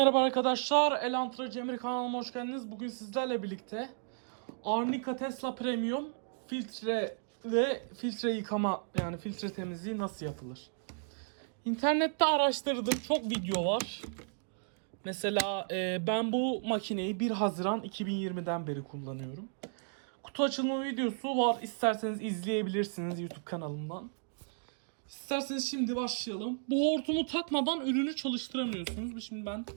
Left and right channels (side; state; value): left; silent; digital silence